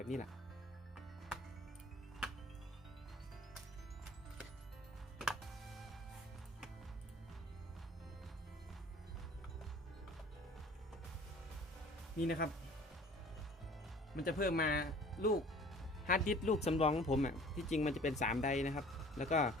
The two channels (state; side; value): normal; both; correlation 0.49